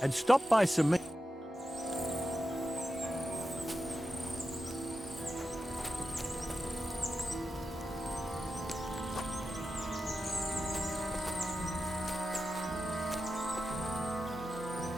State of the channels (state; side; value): normal; both; correlation 0.90